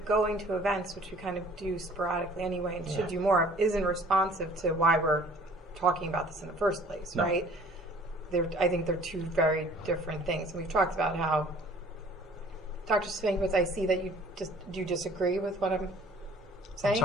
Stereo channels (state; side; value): normal; both; correlation 0.52